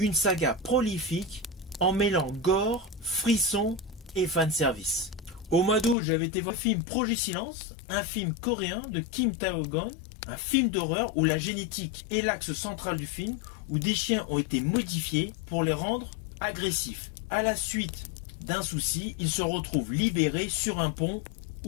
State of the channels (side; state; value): right; drops out; at 6.0 s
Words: saga prolifique en mêlant gore, frisson et fanservice. Au mois d'août, j'avais été voir le film Projet Silence, un film coréen de Kim Tae-gon. Un film d'horreur où la génétique est l'axe central du film, où des chiens ont été modifiés pour les rendre agressifs. À la suite d'un souci, ils se retrouvent libérés sur un pont